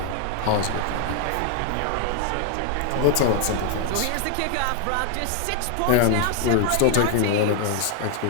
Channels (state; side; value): different; both; correlation 0.00